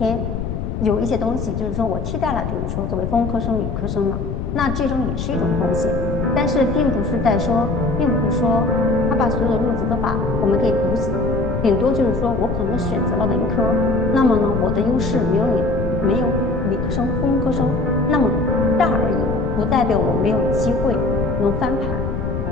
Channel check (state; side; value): noise; left; rumble, 4 dB below the sound